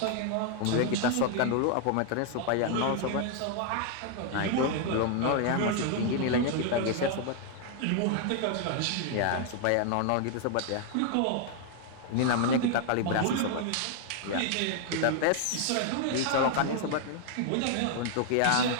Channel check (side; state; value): both; different; correlation 0.00